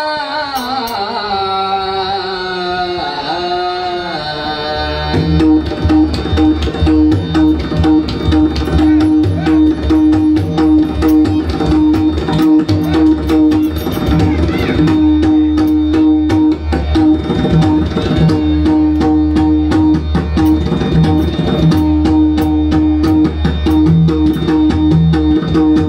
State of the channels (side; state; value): both; identical; correlation 1.00